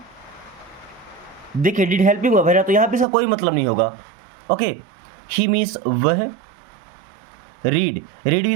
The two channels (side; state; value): left; drops out; at 3.1 s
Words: देखिए डिड हेल्पिंग वर्ब है ना, तो यहाँ पे इसका कोई मतलब नहीं होगा। ओके। ही मीन्स वह। रीड, रीड